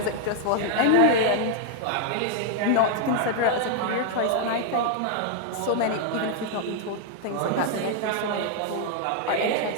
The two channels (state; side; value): different; both; correlation 0.00